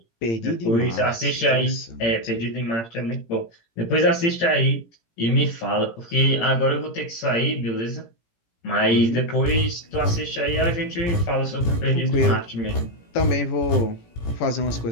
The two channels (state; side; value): late; right; 17 ms